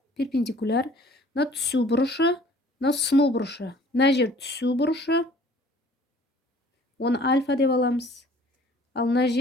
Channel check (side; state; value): both; normal; correlation 0.53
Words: перпендикуляр. Мына түсу бұрышы, мына сыну бұрышы. Мына жер түсу бұрышы. Оны альфа деп аламыз. Ал мына